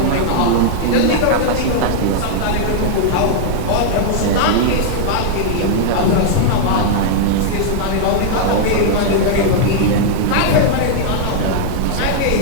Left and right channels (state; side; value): different; both; correlation -0.01